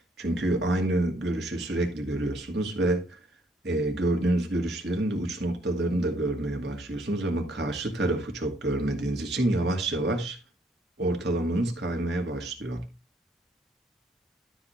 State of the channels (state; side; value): normal; both; correlation 0.67